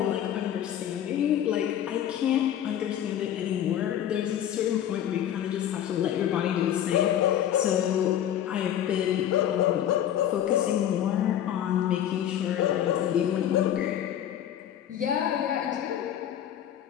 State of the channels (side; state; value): right; quieter; 10.6 dB